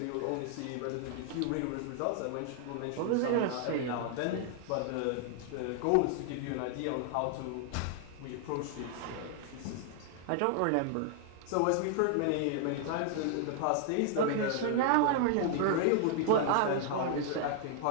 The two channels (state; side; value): different; both; correlation 0.00